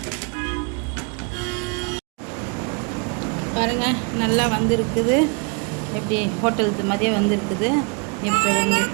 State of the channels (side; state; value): left; quieter; 34.4 dB